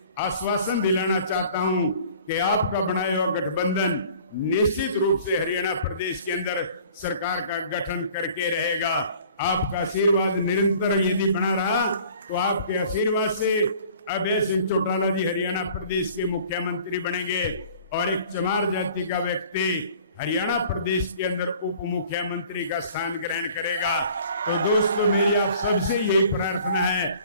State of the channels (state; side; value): inverted; both; correlation -0.50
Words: आश्वासन दिलाना चाहता हूं कि आपका बनाया हुआ गठबंधन निश्चित रूप से हरियाणा प्रदेश के अंदर सरकार का गठन करके रहेगा। आपका आशीर्वाद निरंतर यदि बना रहा तो आपके आशीर्वाद से अभय सिंह चौटाला जी हरियाणा प्रदेश के मुख्यमंत्री बनेंगे और एक चमार जाति का व्यक्ति हरियाणा प्रदेश के अंदर उप मुख्यमंत्री का स्थान ग्रहण करेगा। तो दोस्तों मेरी आप सबसे यही प्रार्थना है